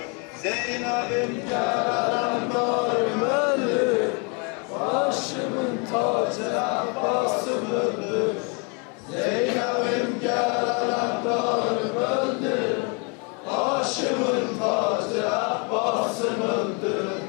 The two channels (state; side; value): quieter; right; 34.5 dB